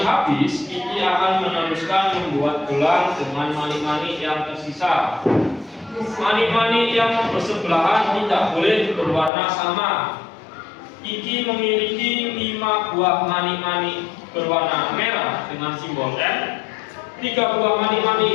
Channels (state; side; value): drops out; right; at 9.3 s